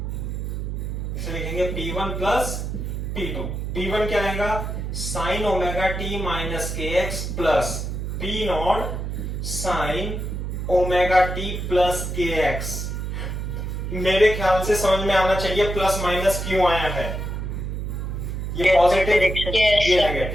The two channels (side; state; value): right; noise; hum, 4 dB below the sound